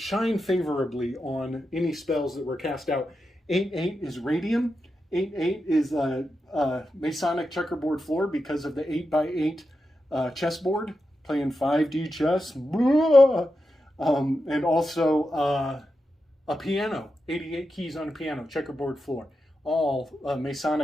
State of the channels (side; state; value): both; normal; correlation 0.88